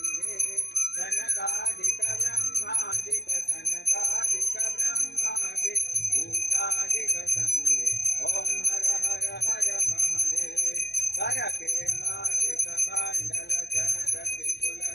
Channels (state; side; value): late; right; 0.48 ms